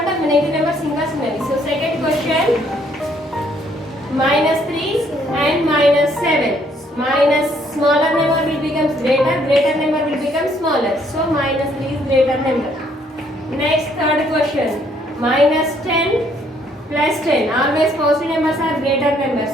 negative numbers ఇంకా చిన్నవి. So second question, -3 and -7. Minus smaller number will become greater, greater number will become smaller. So -3 is greater number. Next, third question, -10 plus 10. Always positive numbers are greater numbers,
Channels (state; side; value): normal; both; correlation 0.67